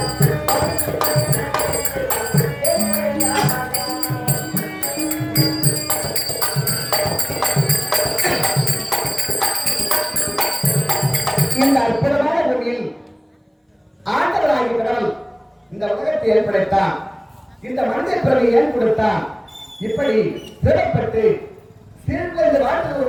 இந்த அற்புதமான பூமியில் ஆண்டவராகிய கடவுள் இந்த உலகத்தை ஏற்படுத்தான். இந்த மனித பிறவை ஏன் கொடுத்தான்? இப்படி சிறப்பட்டு சீர்குலைந்து வாழ்ந்த ஒரு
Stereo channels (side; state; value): both; identical; correlation 1.00